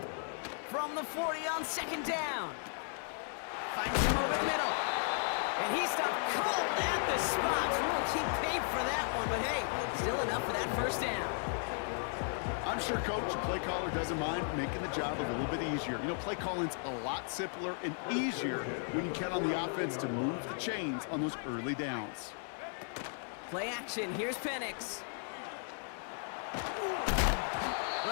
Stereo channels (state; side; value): silent; right; 54 dB below the other